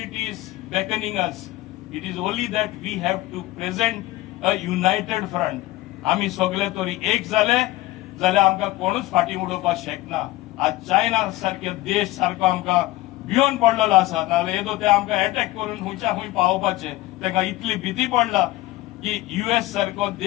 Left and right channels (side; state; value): right; quieter; 17.7 dB